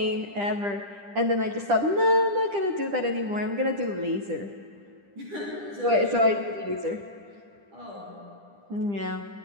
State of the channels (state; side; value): late; left; 10 ms